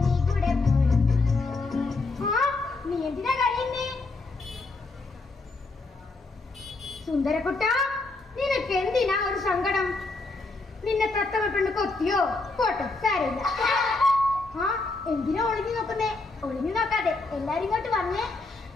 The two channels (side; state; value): right; quieter; 3.4 dB